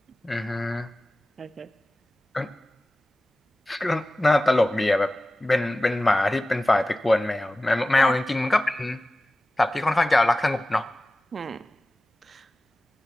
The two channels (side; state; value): both; normal; correlation 0.96